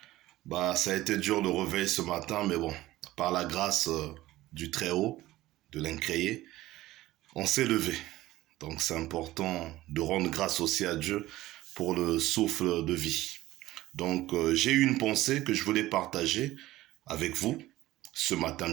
Ça a été dur le réveil ce matin, mais bon, par la grâce du Très-Haut, de l'Incréé, on s'est levé. Donc c'est important de rendre grâce aussi à Dieu pour le souffle de vie. Donc j'ai eu une pensée que je voulais partager avec vous, ce matin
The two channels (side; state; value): left; quieter; 16.5 dB